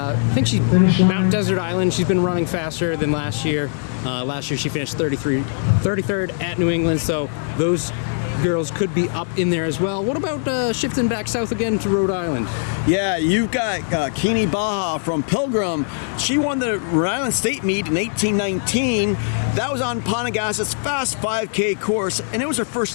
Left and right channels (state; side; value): silent; right; digital silence